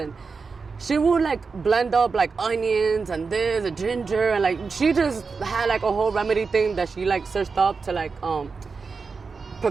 She would like blend up like onions and this and ginger, and like she just had like a whole remedy thing that she like searched up to like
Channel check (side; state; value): left; quieter; 4.8 dB